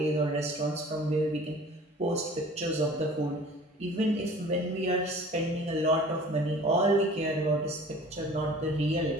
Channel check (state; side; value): normal; both; correlation 0.46